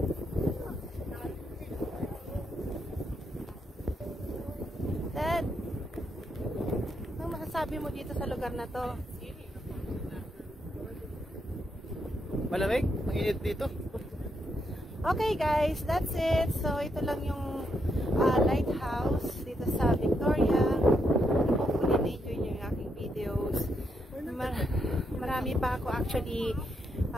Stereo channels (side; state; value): both; normal; correlation 0.79